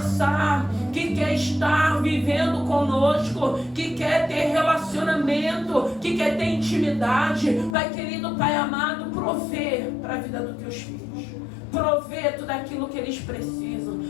que quer estar vivendo conosco, que quer ter relacionamento, que quer ter intimidade. Pai querido, Pai amado, provê para a vida dos teus filhos, provê tudo aquilo que eles precisam.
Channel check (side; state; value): right; drops out; at 7.8 s